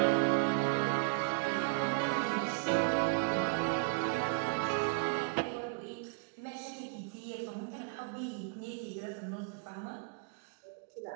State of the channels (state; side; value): quieter; left; 38.5 dB